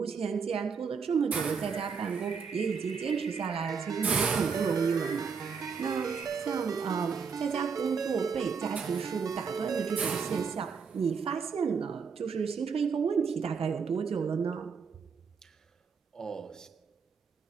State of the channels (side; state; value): left; quieter; 5.8 dB